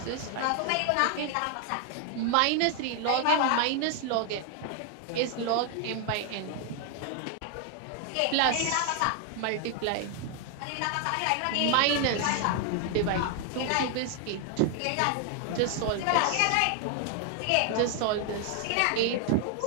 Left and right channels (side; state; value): both; different; correlation 0.00